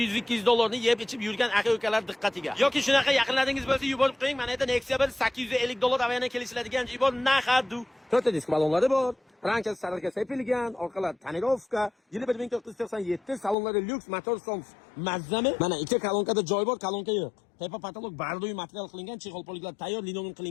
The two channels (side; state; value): right; drops out; at 13.6 s